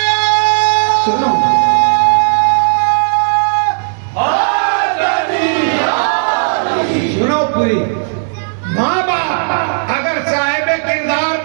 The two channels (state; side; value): silent; left; digital silence